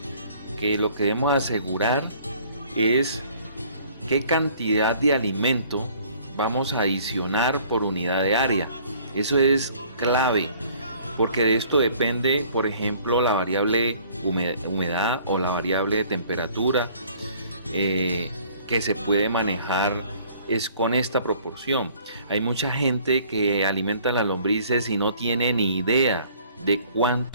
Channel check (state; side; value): inverted; both; correlation -0.56